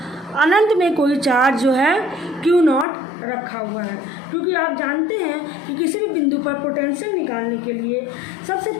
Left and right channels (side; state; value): right; drops out; at 2.9 s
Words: अनंत में कोई चार्ज जो है Q0 रखा हुआ है, क्योंकि आप जानते हैं कि किसी भी बिंदु पर पोटेंशियल निकालने के लिए सबसे